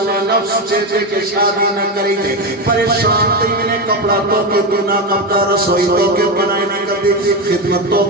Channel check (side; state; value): both; normal; correlation 0.14